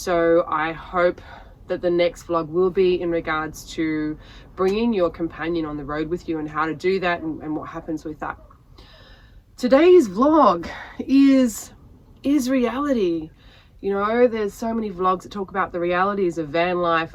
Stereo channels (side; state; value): both; identical; correlation 1.00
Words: I hope that the next vlog will be in regards to bringing your companion on the road with you and how to do that and what happens with that. Today's vlog is reality. You know, there's so many vlogs that talk about the realities of van life,